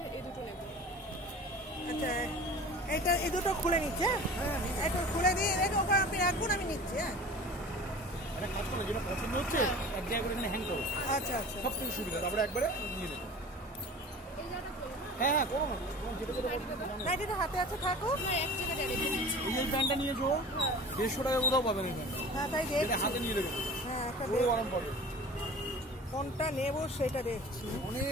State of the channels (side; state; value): both; normal; correlation 0.39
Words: এই দুটো নেব। আচ্ছা, এটা এই দুটো খুলে নিচ্ছে। হ্যাঁ, এটা খুলে দিয়ে রেখে ওখানে আপনি রাখুন, আমি নিচ্ছি। হ্যাঁ, এটা কাজ করো, যেটা পছন্দ হচ্ছে এক জায়গায় করে এখানে হ্যাং করো। আচ্ছা আচ্ছা, সব থেকে সুবিধা, তারপরে একবারে নিয়ে নেবো। হ্যাঁ হ্যাঁ, করো না, যেটা যেটা নাইটিটা হাতে আছে, থাকো। এক জায়গায় রেখে দিচ্ছি। এই প্যান্টটা নিয়েছো 150 টাকা কোথাও পাবেন এই প্যান্ট। হ্যাঁ, তাই এটা দেখছি। হাতে নিয়ে দেবেন। হ্যাঁ, একটা পুরো গরম পড়বে। কোনটা নেব সেটা দেখছি।